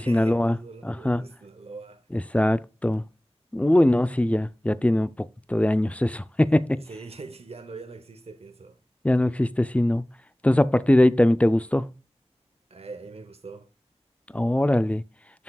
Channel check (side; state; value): both; normal; correlation 0.98